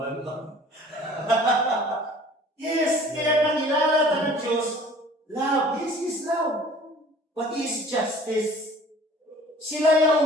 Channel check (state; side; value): normal; both; correlation 0.49